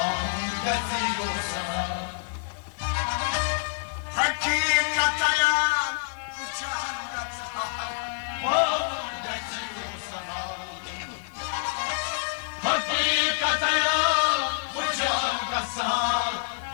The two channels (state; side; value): silent; right; digital silence